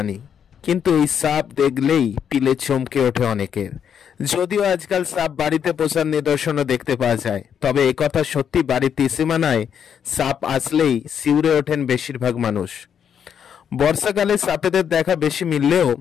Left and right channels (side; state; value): right; quieter; 8.1 dB